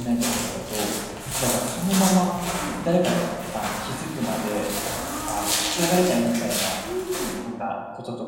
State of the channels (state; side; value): identical; both; correlation 1.00